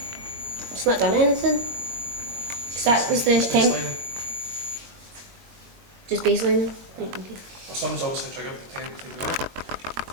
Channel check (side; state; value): left; late; 21 ms